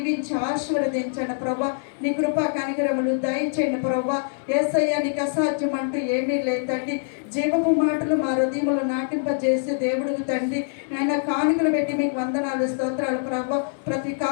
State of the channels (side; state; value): right; silent; digital silence